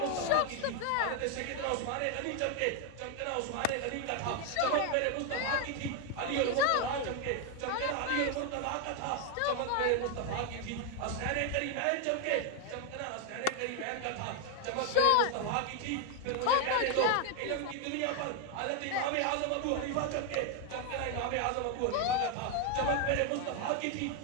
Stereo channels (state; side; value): different; both; correlation 0.01